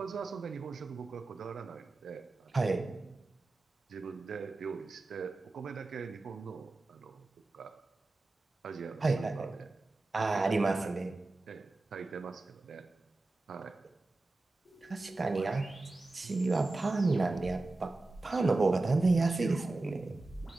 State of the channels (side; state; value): left; quieter; 3.2 dB